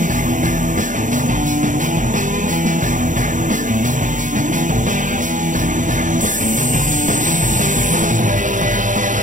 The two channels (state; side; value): late; left; 0.37 ms